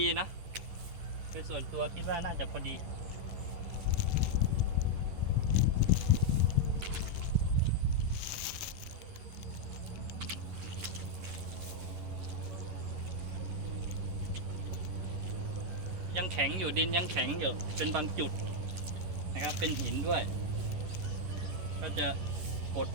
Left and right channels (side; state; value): left; late; 11 ms